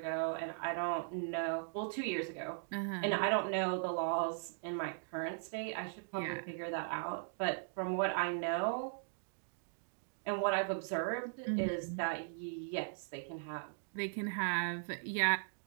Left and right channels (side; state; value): left; silent; digital silence